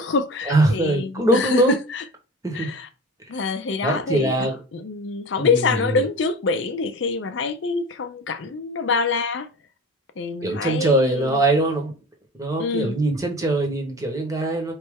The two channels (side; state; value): both; normal; correlation 0.34